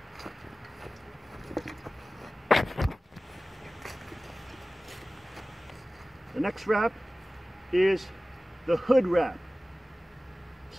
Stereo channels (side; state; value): both; normal; correlation 0.97